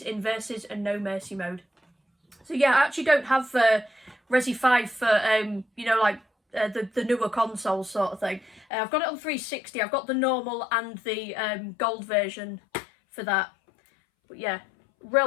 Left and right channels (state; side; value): drops out; right; at 8.7 s